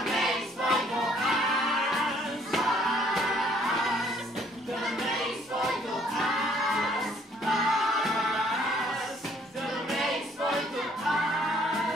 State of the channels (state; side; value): normal; both; correlation 0.63